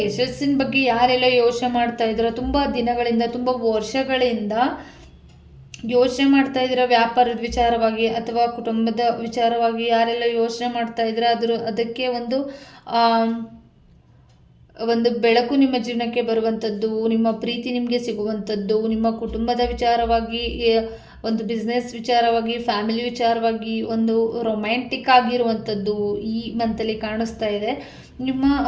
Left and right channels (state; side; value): identical; both; correlation 1.00